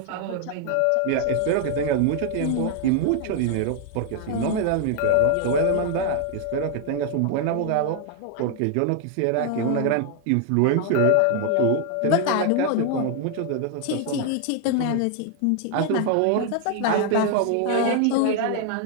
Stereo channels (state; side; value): different; both; correlation 0.00